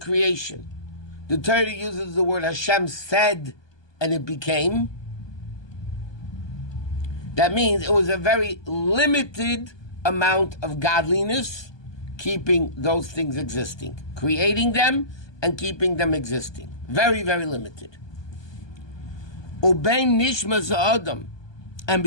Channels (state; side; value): late; right; 1.2 ms